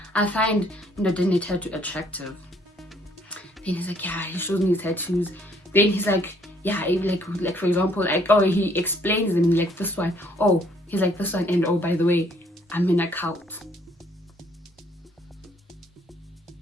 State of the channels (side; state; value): both; normal; correlation 0.63